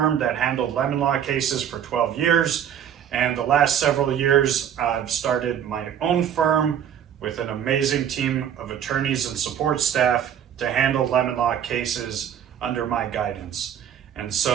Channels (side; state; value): left; quieter; 9.4 dB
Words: that handled lemon law cases for 12 years. And the last several years, I've started my own firm with an amazing team of attorneys and support staff to handle lemon law cases under my guidance. And